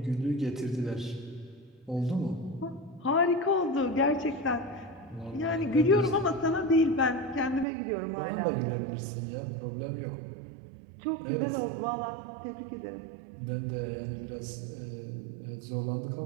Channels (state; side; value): drops out; left; at 7.7 s